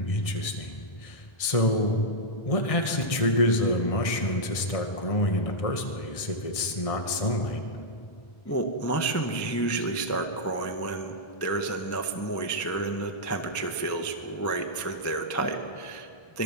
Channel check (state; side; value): late; right; 1.6 ms